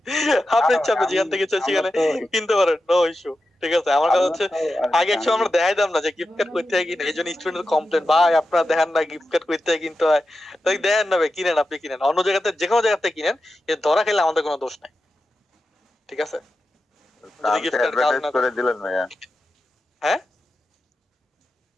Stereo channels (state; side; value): normal; both; correlation 0.90